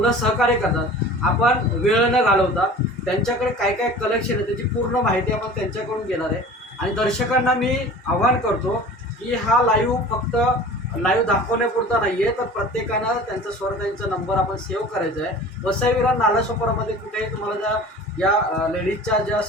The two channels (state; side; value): normal; both; correlation 0.41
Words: सहकार्य करतात. आपण वेळ न घालवता त्यांच्याकडे काय काय कलेक्शन आहे त्याची पूर्ण माहिती आपण त्यांच्याकडून घेणार आहे आणि दर्शकांना मी आवाहन करतो की हा लाईव्ह फक्त लाईव्ह दाखवण्यापुरता नाही आहे, तर प्रत्येकानं त्यांचा स्वराताईंचा नंबर आपण सेव्ह करायचा आहे. वसई विरार नालासोपारामध्ये कुठेही तुम्हाला ज्या या लेडीजच्या ज्या